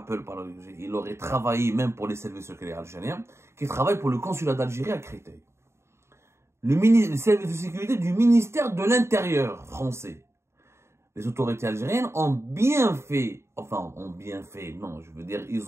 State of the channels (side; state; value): left; late; 0.13 ms